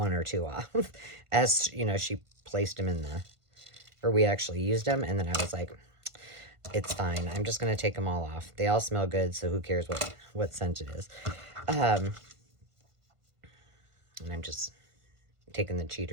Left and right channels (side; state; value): left; late; 1.5 ms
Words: or 2 off as, you know, she placed them in the, or we actually used them. And then I was like, it's fine. I'm just going to take them all off. They all smell good. So who cares what scent it is? And I'm just taking the